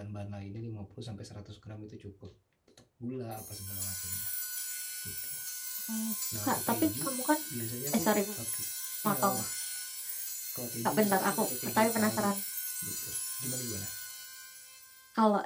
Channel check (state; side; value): identical; both; correlation 1.00